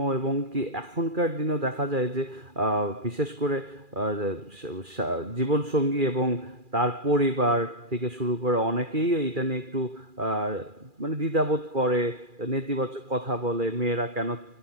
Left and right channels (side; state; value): left; late; 2.4 ms